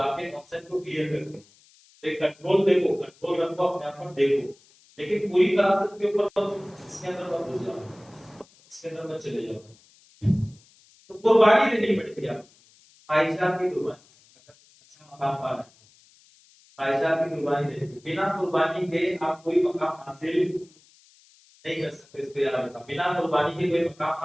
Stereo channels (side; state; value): left; noise; hiss, 29 dB below the sound